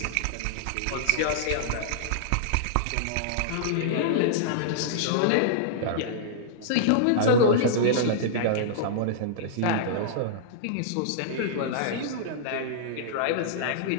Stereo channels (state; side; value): different; both; correlation -0.02